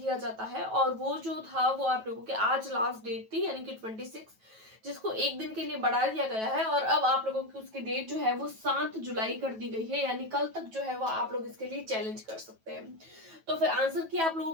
जाता है और वो जो था वो आप लोगों के आज लास्ट डेट थी यानी कि 26, जिसको एक दिन के लिए बढ़ा दिया गया है और अब आप लोगों की उसकी डेट जो है वो 7 जुलाई कर दी गई है, यानी कल तक जो है वो आप लोग इसके लिए चैलेंज कर सकते हैं। तो फिर आंसर की आप लोगों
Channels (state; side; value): late; left; 9.2 ms